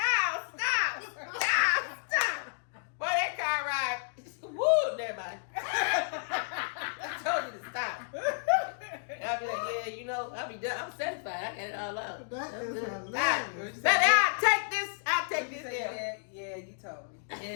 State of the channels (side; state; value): right; silent; digital silence